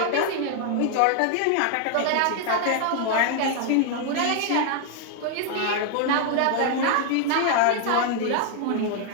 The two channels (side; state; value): both; different; correlation 0.00